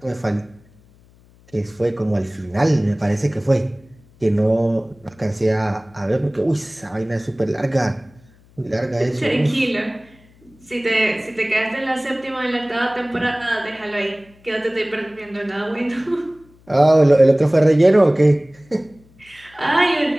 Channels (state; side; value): noise; left; hum, 29 dB below the sound